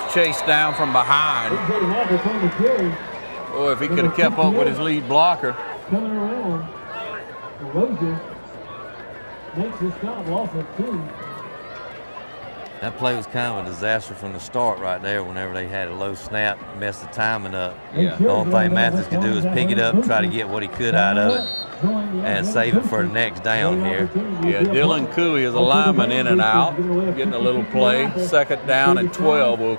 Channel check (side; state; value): both; inverted; correlation -1.00